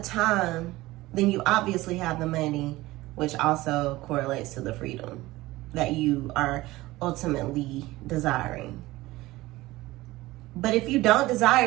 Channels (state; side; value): quieter; left; 18.7 dB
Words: then you obviously have the money, which also correlates to the freedom that you are ultimately desiring. But if you don't